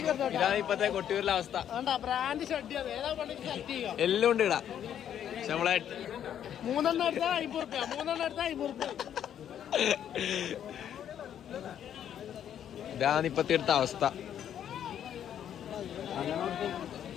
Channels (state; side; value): quieter; right; 9.8 dB